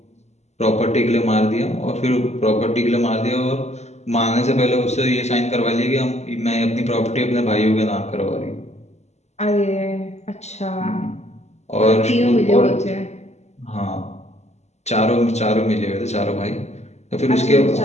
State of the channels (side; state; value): right; late; 0.32 ms